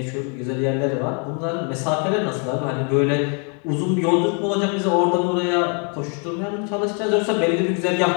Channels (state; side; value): quieter; right; 39.3 dB